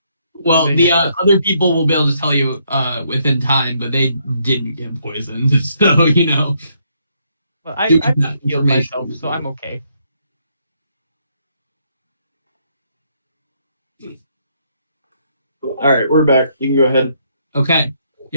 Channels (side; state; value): both; inverted; correlation -0.72